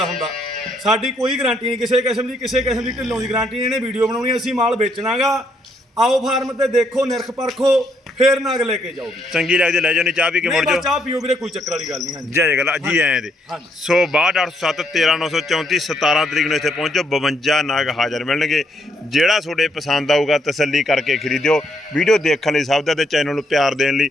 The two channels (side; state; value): both; normal; correlation 0.73